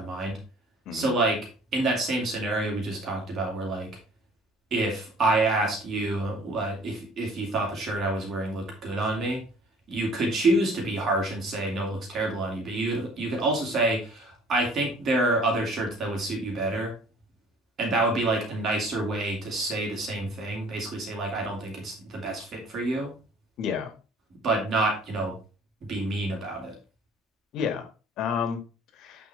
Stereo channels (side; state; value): both; normal; correlation 0.52